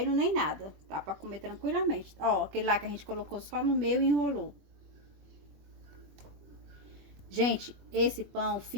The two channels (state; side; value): late; left; 20 ms